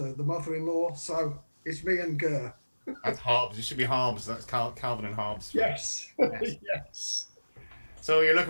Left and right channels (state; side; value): inverted; both; correlation -1.00